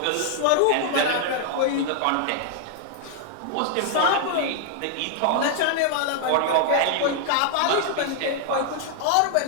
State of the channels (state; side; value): different; both; correlation 0.00